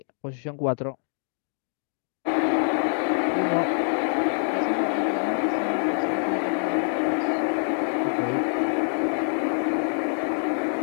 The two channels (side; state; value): right; silent; digital silence